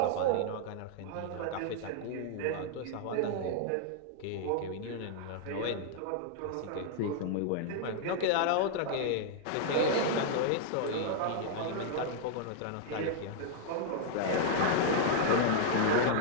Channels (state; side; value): different; both; correlation -0.01